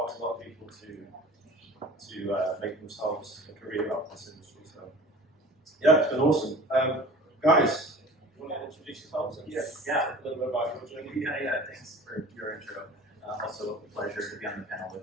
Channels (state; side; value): normal; both; correlation 0.42